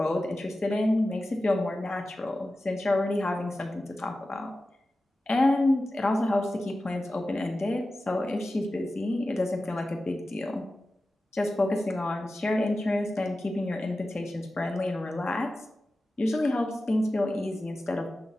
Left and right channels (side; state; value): both; normal; correlation 0.94